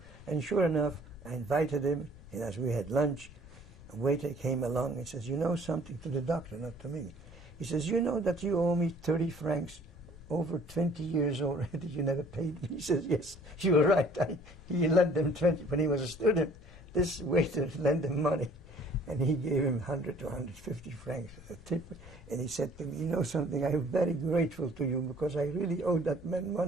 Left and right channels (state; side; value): noise; left; rumble, 19 dB below the sound